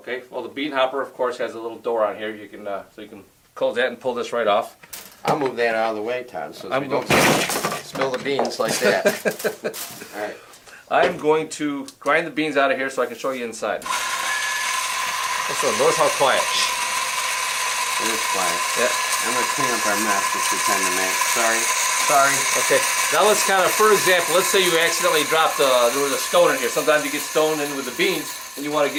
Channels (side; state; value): both; identical; correlation 1.00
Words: well the bean hopper of course has a little door on here. You can so you can close that and pull this right off. I'll move that out of the way, Todd, so we don't spill the beans like that. All right. I'm going to grind the beans out of here so I can show you inside. Notice how quiet. It is quiet. Yeah. I'm going to clean up our mess which we tend to make. Sorry. Okay, now let's kind of, for example, let's say you accidentally dropped, there was a stone in here. Sometimes you get stone in with the beans and you want to